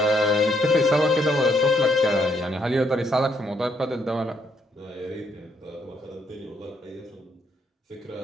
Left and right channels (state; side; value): normal; both; correlation 0.73